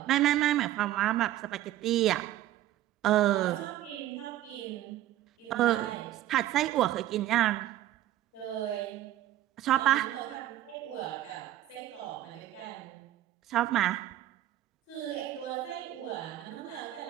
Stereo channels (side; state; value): left; quieter; 13.8 dB